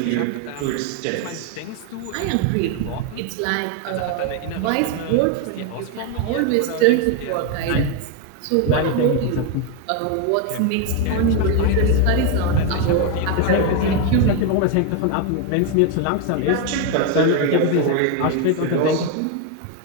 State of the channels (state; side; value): different; both; correlation 0.01